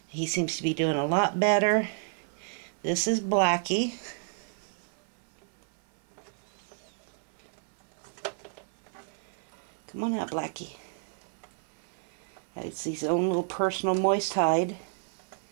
He seems to be doing a lot better. This is Blacky. Come on out, Blacky. It's his own little personal moist hide.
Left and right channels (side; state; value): left; silent; 57 dB below the other